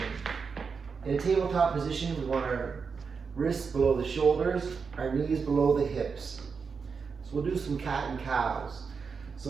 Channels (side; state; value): left; quieter; 5.5 dB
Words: In a tabletop position, we want our wrists below the shoulders, our knees below the hips. So we'll do some cat and cows. So